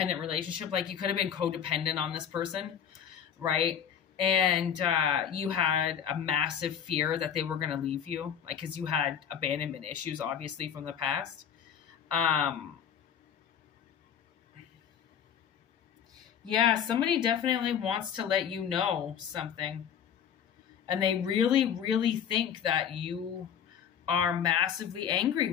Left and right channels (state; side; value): quieter; right; 8.5 dB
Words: relationship. Like, you could have been codependent on this person, right? And you had a massive fear that they were going to leave you, like, because you had abandonment issues, obviously, from the past. Yeah, somebody definitely wants to let you know something. And they really, really think that you are massively angry